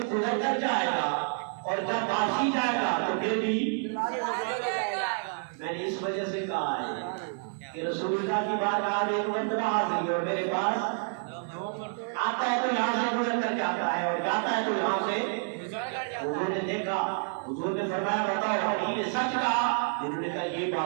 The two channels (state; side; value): silent; left; 59 dB below the other